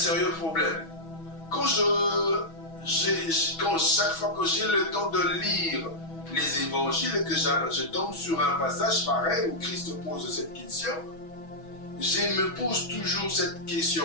problème. Chaque fois que j'ai le temps de lire les évangiles et que je tombe sur un passage pareil où Christ pose cette question, je me pose toujours cette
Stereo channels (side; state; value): right; late; 6.2 ms